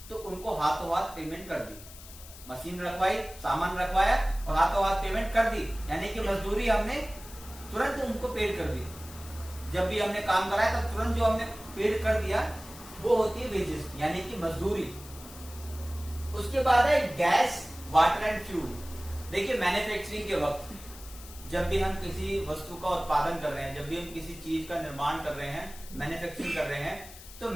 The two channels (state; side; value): noise; left; hiss, 17 dB below the sound